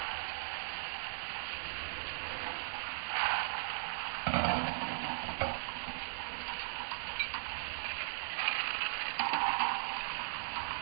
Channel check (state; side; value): silent; left; 52 dB below the other